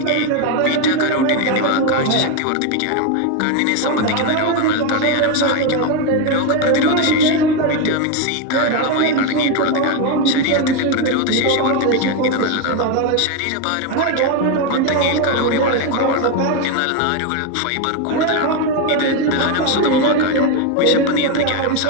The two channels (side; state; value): both; different; correlation 0.02